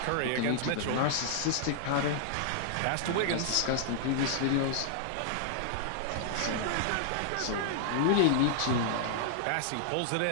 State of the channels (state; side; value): different; both; correlation -0.01